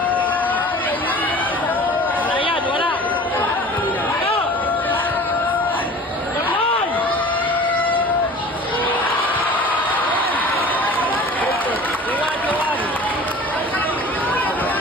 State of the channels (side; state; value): both; normal; correlation 0.42